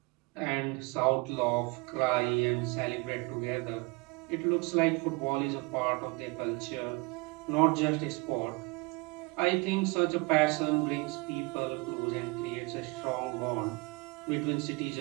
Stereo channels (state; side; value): quieter; left; 27.5 dB